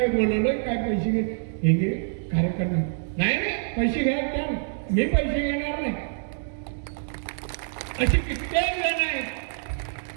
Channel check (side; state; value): left; silent; digital silence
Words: बोलवलं, काय पैसे घे, हे घे कार्यकर्ता. नाही पैसे घ्या, त्या मी पैसे घेणार नाही. अशी कित्येक जण आहेत